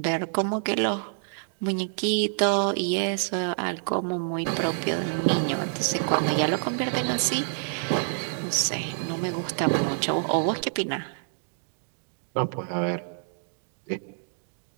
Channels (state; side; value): silent; left; digital silence